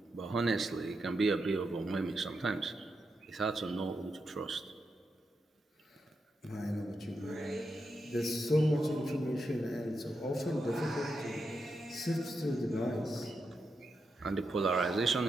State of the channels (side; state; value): both; normal; correlation 0.86